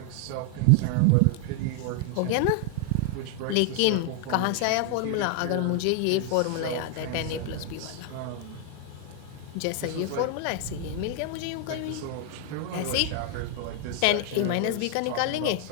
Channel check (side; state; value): both; different; correlation 0.00